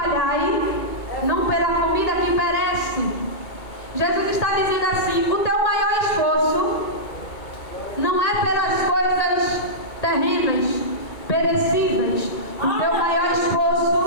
não pela comida que perece. Jesus está dizendo assim, o teu maior esforço não é pelas coisas terrenas, perecíveis. O teu maior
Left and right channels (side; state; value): right; late; 2.2 ms